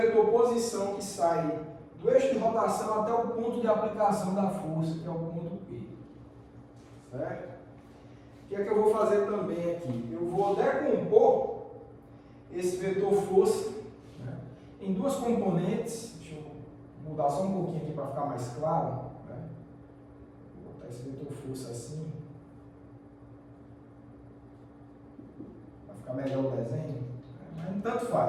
posição que sai do eixo de rotação até o ponto de aplicação da força, que é o ponto P. Certo? O que é que eu vou fazer também aqui? Eu vou decompor esse vetor força, né, em duas componentes. Deixa eu mudar só um pouquinho aqui para ficar mais claro. Né? Vou botar esse vetor força assim, para ficar melhor o desenho. Mas tanto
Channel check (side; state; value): both; identical; correlation 1.00